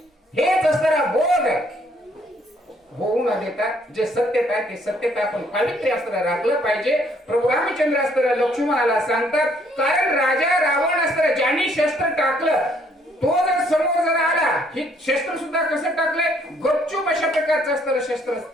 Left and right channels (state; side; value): normal; both; correlation 0.66